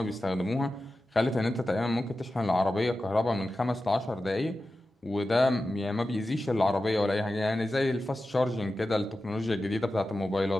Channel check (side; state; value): both; normal; correlation 0.93